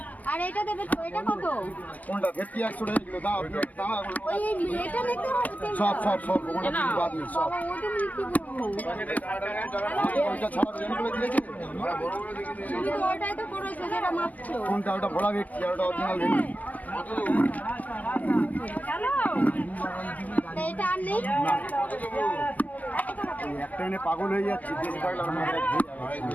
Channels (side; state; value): right; late; 0.077 ms